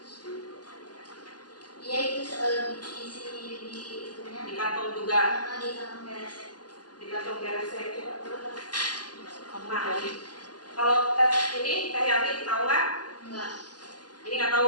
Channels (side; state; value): right; late; 0.69 ms